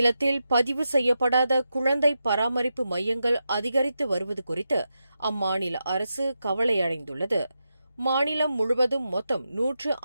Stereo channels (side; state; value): both; inverted; correlation -0.88